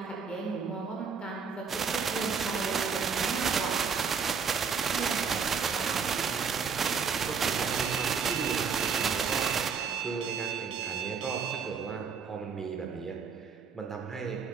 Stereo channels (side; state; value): left; quieter; 6.0 dB